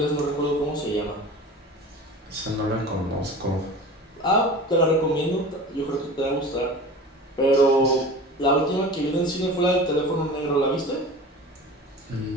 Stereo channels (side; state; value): both; normal; correlation 0.37